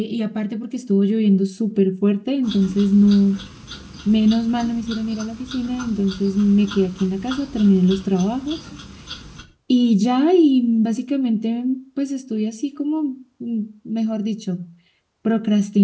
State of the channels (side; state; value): both; identical; correlation 1.00